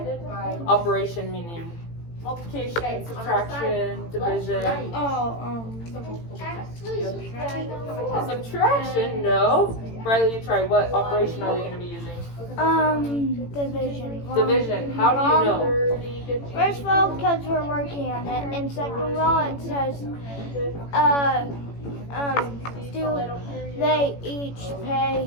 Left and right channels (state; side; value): late; right; 18 ms